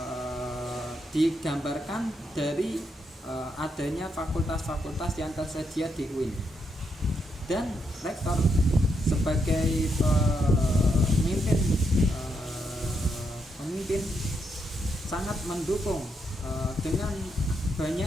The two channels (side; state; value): both; normal; correlation 0.79